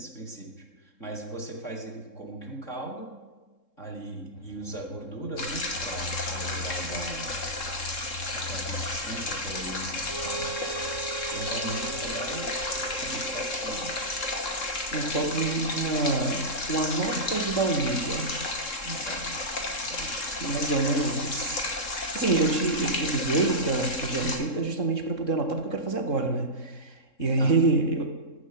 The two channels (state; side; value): late; right; 3.7 ms